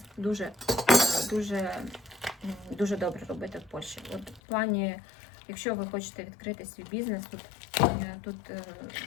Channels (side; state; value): right; drops out; at 4.4 s